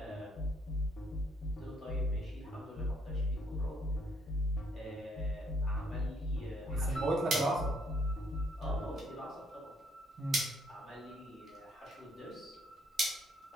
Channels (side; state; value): both; normal; correlation 0.68